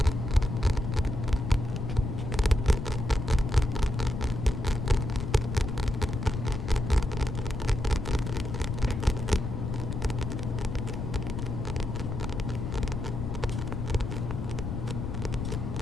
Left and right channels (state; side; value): noise; left; rumble, 3 dB below the sound